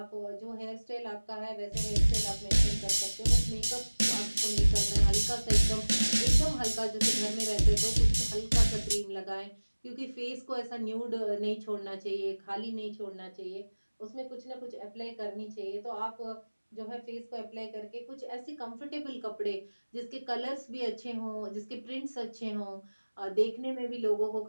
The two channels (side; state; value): both; inverted; correlation -1.00